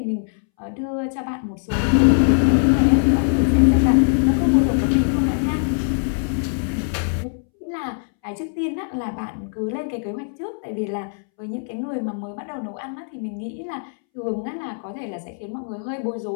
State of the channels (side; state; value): right; silent; 64 dB below the other